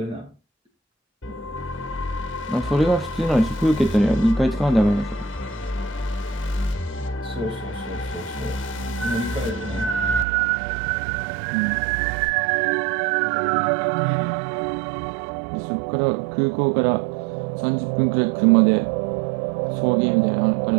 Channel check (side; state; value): left; drops out; at 10.2 s